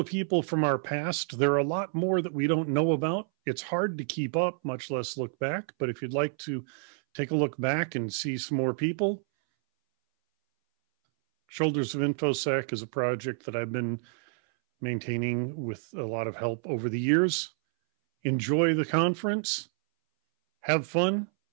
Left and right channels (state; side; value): silent; left; 59 dB below the other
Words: people from our past. There are a lot more that we don't know about. It's hard to keep up, much less look back. But if you'd like to take a look back and see some more people, Shoulders of InfoSec is a project that I've been maintaining with a lot of help over the years. Enjoy the conference. Have fun.